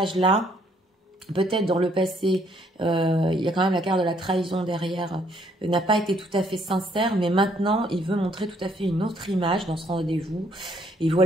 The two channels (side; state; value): both; normal; correlation 0.67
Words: peut-être dans le passé, il y a quand même la carte de la trahison derrière, n'a pas été tout à fait sincère, mais maintenant, il veut montrer tout à fait une autre image dans ce rendez-vous. Et